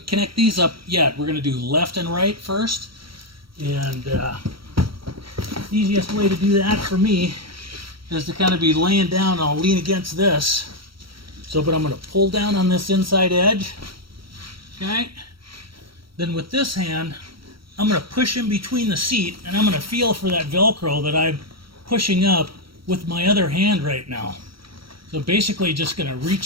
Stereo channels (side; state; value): left; late; 0.74 ms